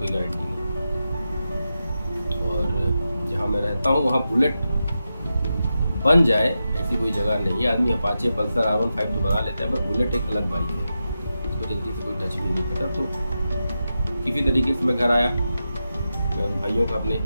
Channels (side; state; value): both; inverted; correlation -0.90